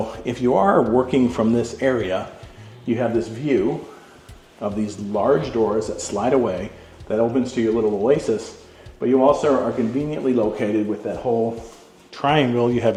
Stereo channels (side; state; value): both; identical; correlation 1.00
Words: if you are working from this area, you have this view of these large doors that slide away, that opens to your little oasis. But you also are conveniently located with that whole triangle. You have